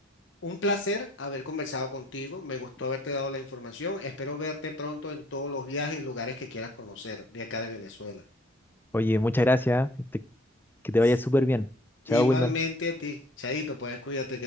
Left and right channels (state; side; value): normal; both; correlation 0.61